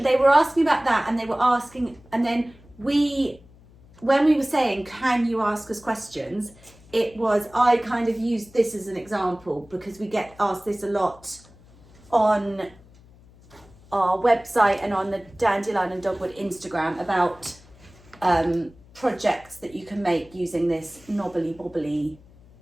they were asking about that, and they were asking, and then when we were saying, can you ask us questions, it was, I kind of used this as an example because we get asked this a lot on our website and on the Dandelion Dogwood Instagram about projects that you can make using this knobbly bobbly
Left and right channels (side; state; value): left; noise; hum, 25 dB below the sound